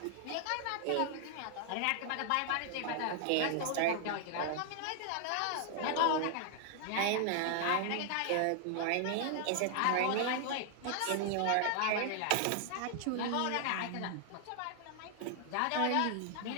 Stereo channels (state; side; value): different; both; correlation 0.00